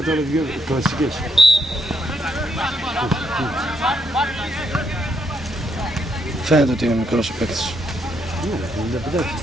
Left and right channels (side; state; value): both; normal; correlation 0.75